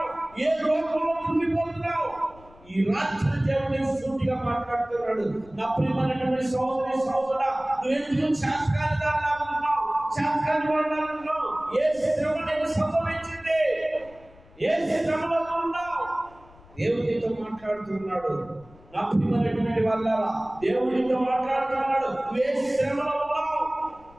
ఏ రోగంలో కృంగిపోతున్నావు? ఈ రాత్రి దేవుని సూటిగా మాట్లాడుతున్నాడు. నా ప్రియమైనటువంటి సహోదరి సహోదరుడా, నువ్వెందుకు చేతకాని దానిలా ఉన్నావు, చేతకాని వాడిలా ఉన్నావు? ఏ శ్రమ నీకు సంభవించింది? ఏ శ్రమలో ఉన్నావు? దేవునితో మాట్లాడుతున్నాడు. నా ప్రియమైనటువంటి వాళ్ళారా, దేవునితో మాట్లాడుతున్నాడు. నువ్వు ఏ శ్రమలో ఉన్నావు?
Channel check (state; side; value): noise; left; rumble, 24 dB below the sound